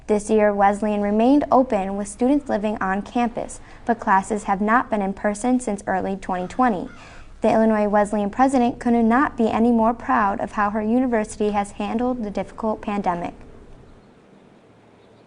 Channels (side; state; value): both; identical; correlation 1.00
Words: This year, Wesleyan remained open with students living on campus, but classes have not been in person since early 2020. The Illinois Wesleyan president could not be any more proud of how her university has handled the difficult pandemic.